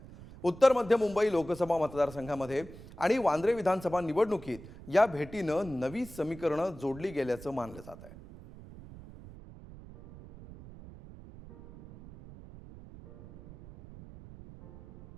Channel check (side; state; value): right; noise; rumble, 17 dB below the sound